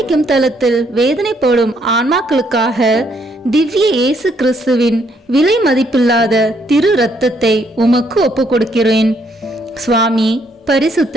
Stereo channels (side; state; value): both; normal; correlation 0.71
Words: தலத்தில் வேதனைப்படும் ஆன்மாக்களுக்காக திவ்ய இயேசு கிறிஸ்துவின் விலை மதிப்பில்லாத திரு இரத்தத்தை உமக்கு ஒப்பு கொடுக்கிறேன். சுவாமி,